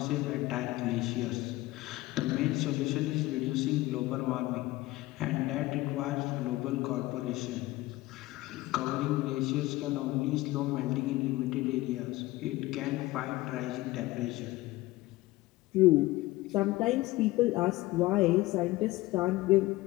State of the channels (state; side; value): quieter; right; 18.8 dB